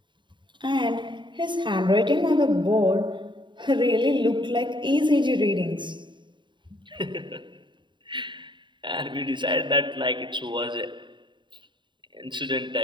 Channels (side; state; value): left; late; 0.23 ms